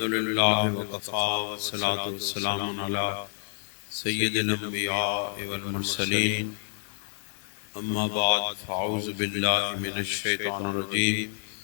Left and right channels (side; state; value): right; silent; digital silence